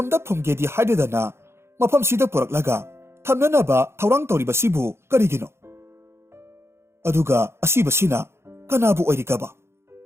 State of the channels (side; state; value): left; late; 0.12 ms